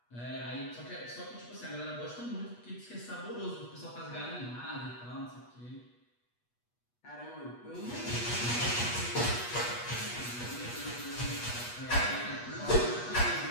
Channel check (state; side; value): late; right; 8.3 ms